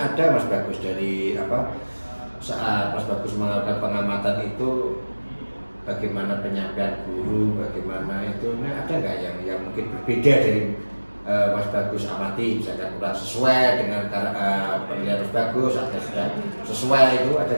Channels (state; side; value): inverted; both; correlation -1.00